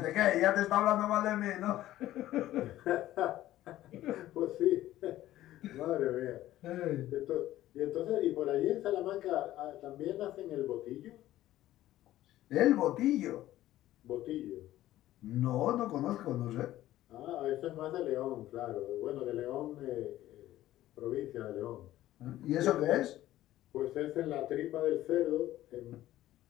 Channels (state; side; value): quieter; right; 14.5 dB